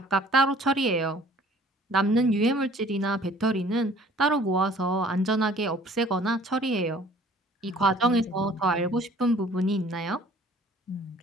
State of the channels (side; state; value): both; normal; correlation 0.53